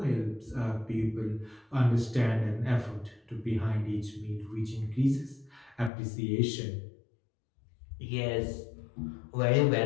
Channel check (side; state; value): right; drops out; at 5.9 s